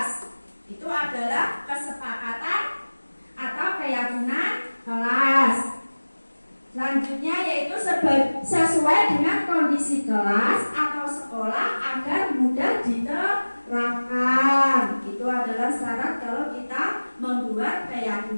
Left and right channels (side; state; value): both; inverted; correlation -1.00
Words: Itu adalah kesepakatan atau keyakinan kelas. Selanjutnya yaitu sesuai dengan kondisi kelas atau sekolah agar mudah diterapkan. Itu adalah syarat kalau kita membuat